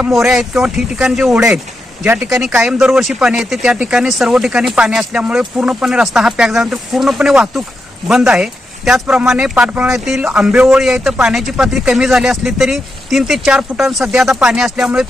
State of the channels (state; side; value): normal; both; correlation 0.86